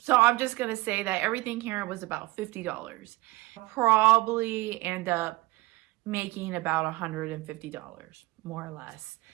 So I'm just going to say that everything here was about $50. I'll probably end up making about $150, more or less.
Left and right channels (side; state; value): left; quieter; 21.4 dB